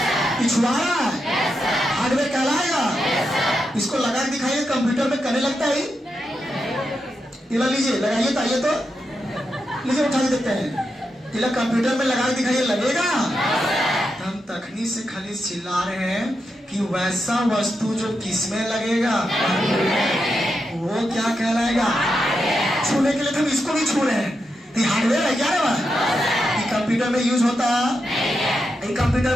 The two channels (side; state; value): both; normal; correlation 0.86